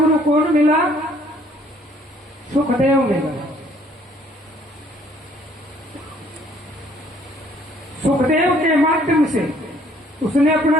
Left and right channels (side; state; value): both; normal; correlation 0.61